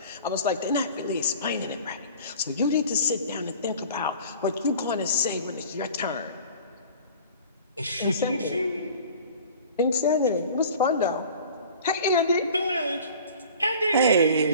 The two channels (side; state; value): both; inverted; correlation -0.44